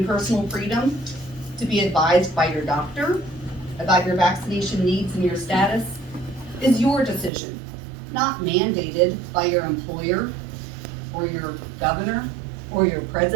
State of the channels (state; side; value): drops out; left; at 7.3 s